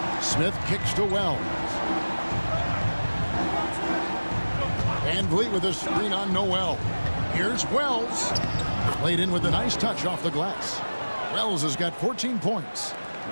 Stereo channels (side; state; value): both; inverted; correlation -1.00